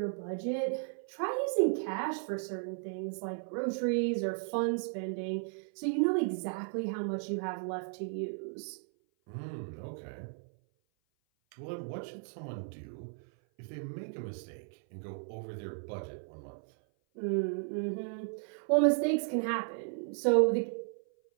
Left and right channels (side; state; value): left; silent; 55 dB below the other